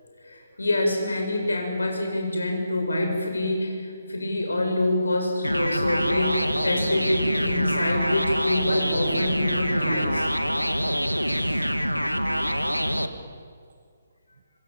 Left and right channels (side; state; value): both; inverted; correlation -0.90